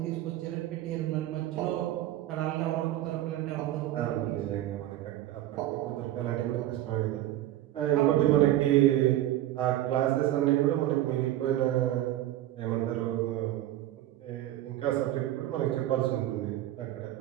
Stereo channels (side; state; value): left; quieter; 14.0 dB